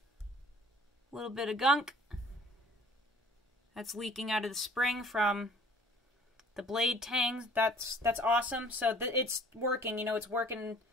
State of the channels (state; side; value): normal; both; correlation 0.53